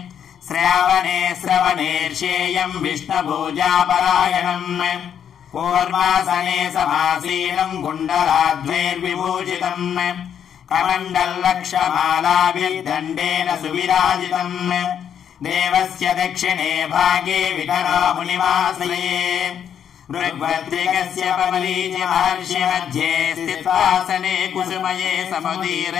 श्रावणे श्रवणेर्षेयम् विष्णुपूजापरायणम् कूर्मासने समासीनम् कुण्डलाद्वैर्विभूषितम् कमण्डलक्षमालाभिर्दण्डेन सुविराजितम् देवस्य दक्षिणे भागे विखरामुनिमाश्रये ऋग्भद्रिकस्य पमलीचि महर्षि मध्ये स्थित्वासने कुसुमये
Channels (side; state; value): right; quieter; 8.6 dB